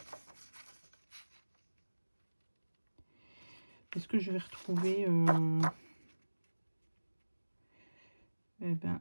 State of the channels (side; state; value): both; inverted; correlation -1.00